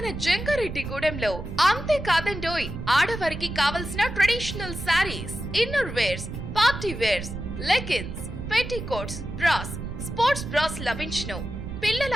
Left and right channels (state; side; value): noise; right; rumble, 8 dB below the sound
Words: జంగారెడ్డిగూడెంలో. అంతేకాదండోయ్, ఆడవారికి కావలసిన traditional saris, inner wears, party wears, leggings, petticoats, bras, sports bras లభించును.